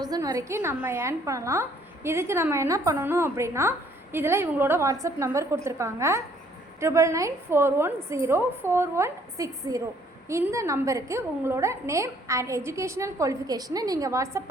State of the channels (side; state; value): both; normal; correlation 0.62